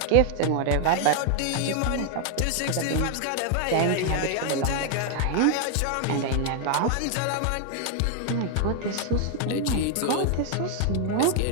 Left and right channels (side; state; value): both; different; correlation 0.00